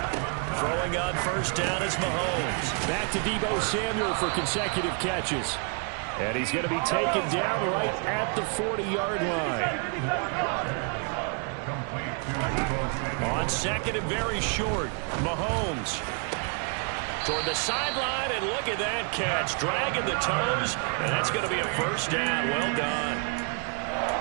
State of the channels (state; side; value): quieter; left; 39.2 dB